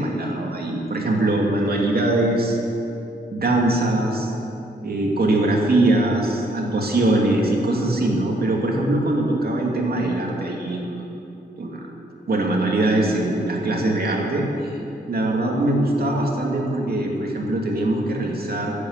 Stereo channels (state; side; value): normal; both; correlation 0.67